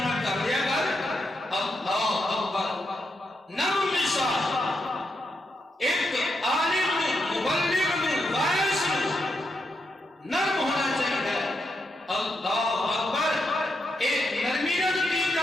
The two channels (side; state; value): both; normal; correlation 0.83